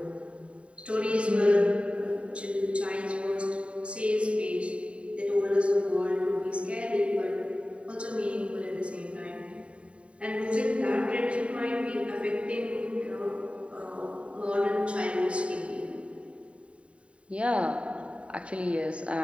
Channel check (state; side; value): late; left; 0.061 ms